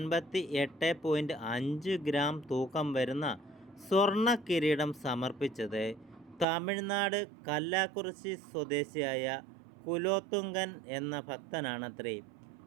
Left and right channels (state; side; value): drops out; left; at 6.5 s